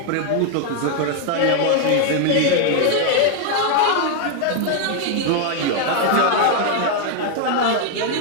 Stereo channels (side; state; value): both; different; correlation 0.01